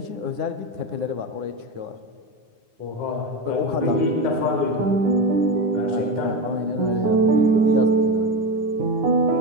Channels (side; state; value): left; late; 9.7 ms